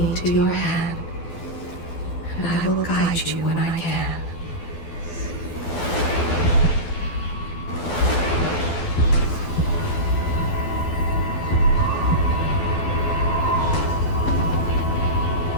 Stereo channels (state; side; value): late; right; 12 ms